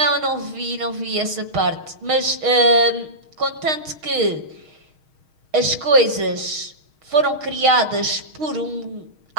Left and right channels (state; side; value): late; left; 6.4 ms